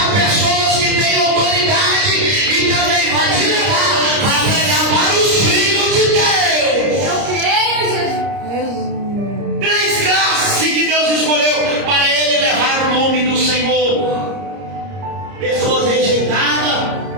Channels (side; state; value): left; late; 30 ms